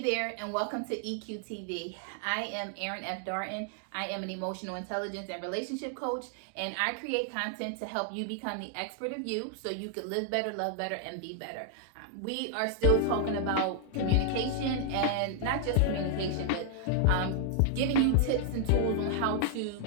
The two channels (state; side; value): different; both; correlation 0.00